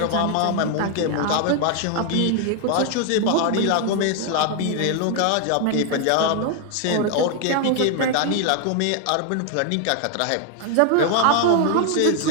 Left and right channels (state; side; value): different; both; correlation 0.00